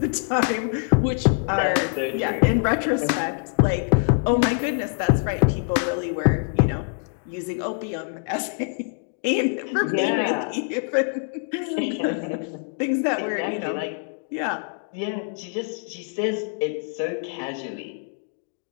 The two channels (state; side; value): silent; right; 62 dB below the other